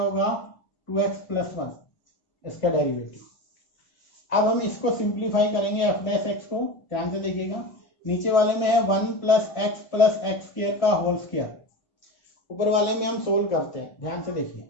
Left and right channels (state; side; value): late; right; 1.4 ms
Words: 2x + 1 इसका डेरिवेटिव। अब हम इसको सिंप्लीफाई करेंगे f' को। ध्यान से देखिएगा, नीचे वाले में है 1 + x + x स्क्वायर का होल स्क्वायर, ऊपर वाले में हम सोल्व करते हैं। ध्यान से देखिए,